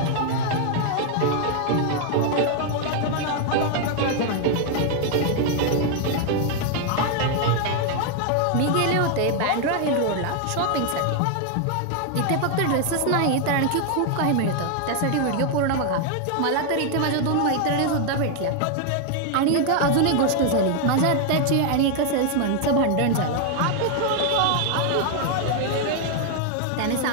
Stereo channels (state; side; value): different; both; correlation 0.00